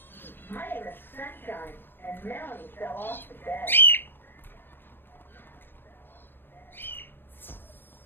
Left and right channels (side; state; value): right; late; 0.10 ms